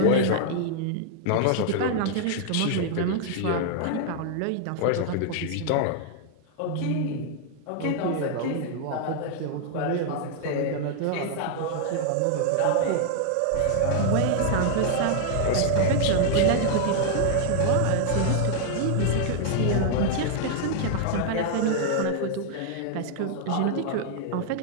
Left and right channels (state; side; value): different; both; correlation 0.00